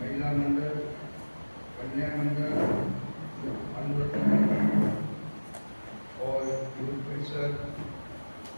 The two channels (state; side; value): inverted; both; correlation -1.00